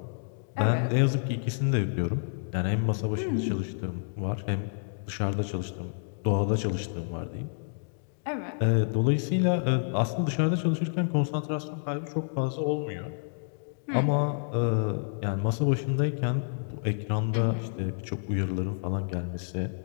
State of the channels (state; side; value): silent; right; digital silence